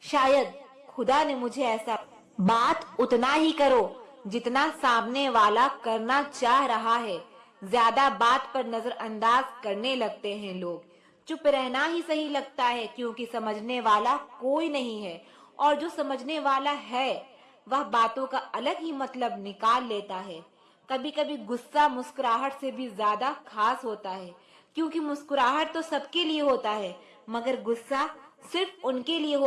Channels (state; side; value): identical; both; correlation 1.00